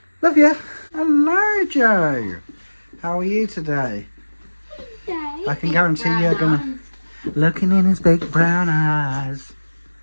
Love you. Hello, Joe. How are you today? I can guarantee you're gonna looking in his big brown eyes.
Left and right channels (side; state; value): both; inverted; correlation -1.00